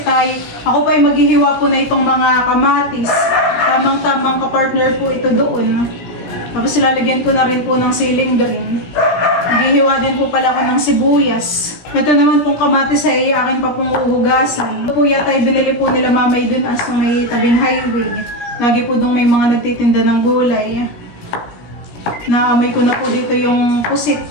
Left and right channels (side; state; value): right; late; 17 ms